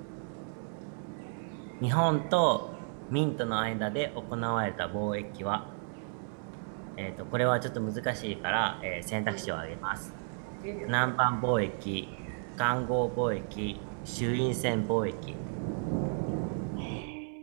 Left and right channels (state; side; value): silent; left; 56 dB below the other